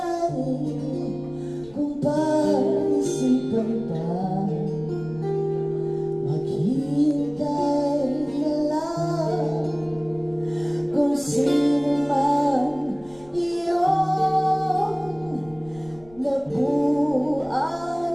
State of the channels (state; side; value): noise; left; rumble, 25 dB below the sound